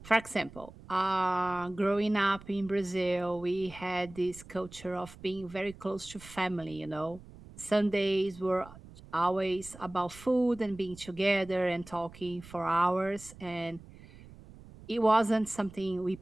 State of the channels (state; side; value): noise; right; rumble, 19 dB below the sound